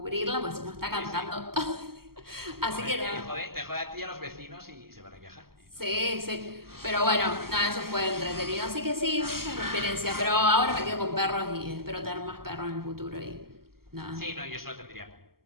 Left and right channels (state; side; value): late; left; 0.93 ms